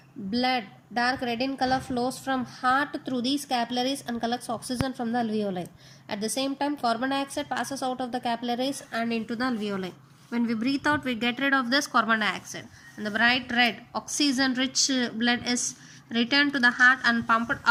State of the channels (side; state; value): both; identical; correlation 1.00